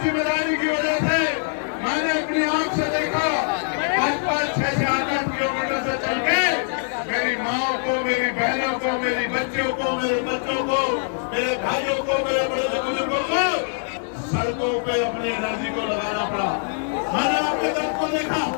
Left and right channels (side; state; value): right; silent; digital silence